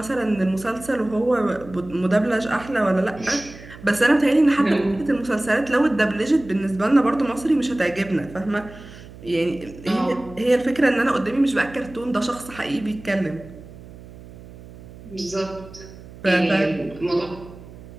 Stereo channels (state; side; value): noise; right; hum, 18 dB below the sound